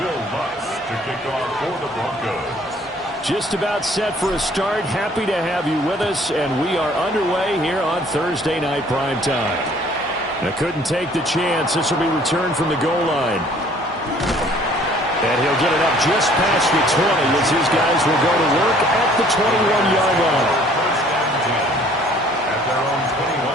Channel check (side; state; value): both; normal; correlation 0.57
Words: Lutz to kick off for the Broncos. Just about set for a start. Happy to have you with us, and we are underway here on Thursday Night Primetime. Now, couldn't take the chance. This will be returned from the goal line. And he'll get it up just past the 20 as his guys will go to work at the 21-yard line. First and 10 at their own